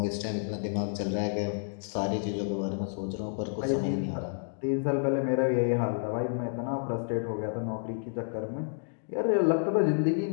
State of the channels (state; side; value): silent; right; digital silence